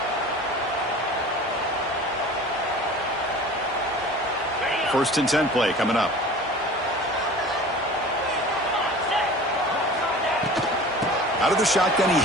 1st and 10 play coming up. Out of the shotgun, he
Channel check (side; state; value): both; normal; correlation 0.40